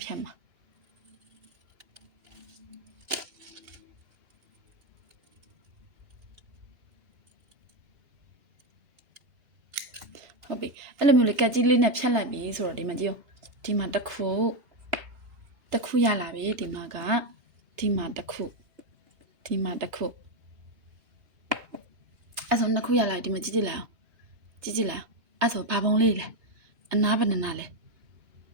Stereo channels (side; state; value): left; late; 2.8 ms